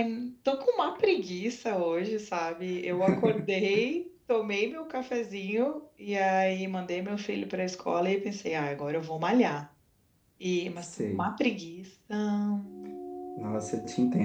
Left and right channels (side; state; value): both; identical; correlation 1.00